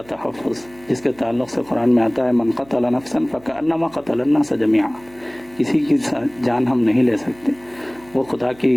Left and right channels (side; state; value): right; noise; hum, 26 dB below the sound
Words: تحفظ، جس کے تعلق سے قرآن میں آتا ہے من قتل نفسا فکأنما قتل الناس جميعا. کسی کی جان ہم نہیں لے سکتے، وہ خدا